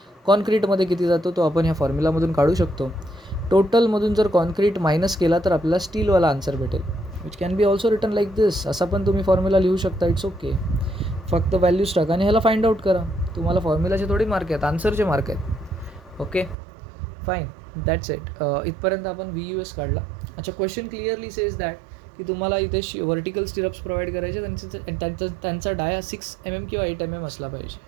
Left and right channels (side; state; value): left; drops out; at 16.6 s